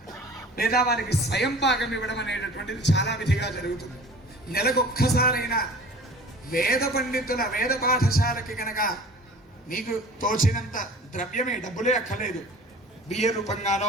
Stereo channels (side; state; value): both; normal; correlation 0.43